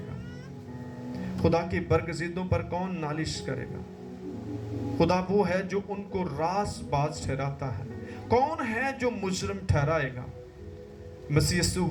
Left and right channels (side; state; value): both; identical; correlation 1.00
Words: खुदा की बरगज़िदों पर कौन नालिश करेगा? खुदा वो है जो उनको रासबाज ठहराता है। कौन है जो मुजरिम ठहराएगा? मसीह यीशु